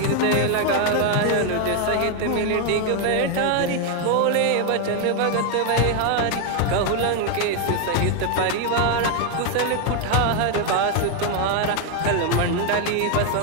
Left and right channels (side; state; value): both; different; correlation 0.01